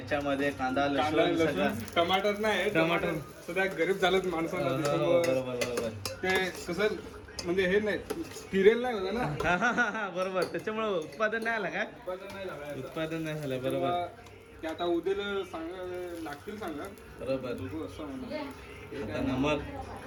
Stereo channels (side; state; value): both; identical; correlation 1.00